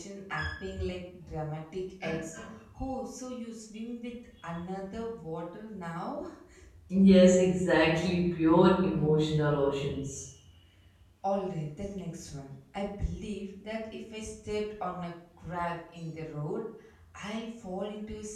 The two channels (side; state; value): both; identical; correlation 1.00